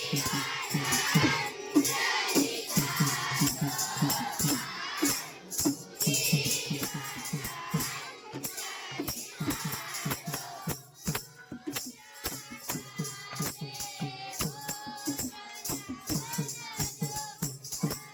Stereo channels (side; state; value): both; identical; correlation 1.00